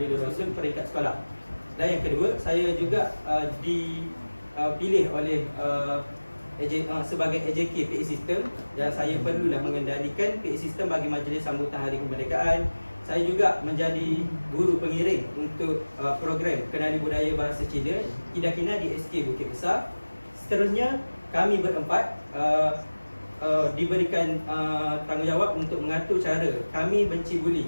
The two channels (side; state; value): both; inverted; correlation -1.00